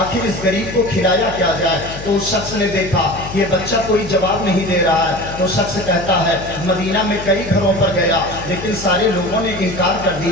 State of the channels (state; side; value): noise; left; hum, 12 dB below the sound